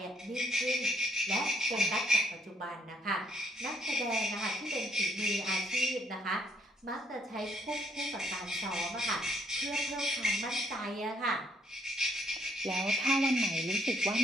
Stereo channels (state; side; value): normal; both; correlation 0.69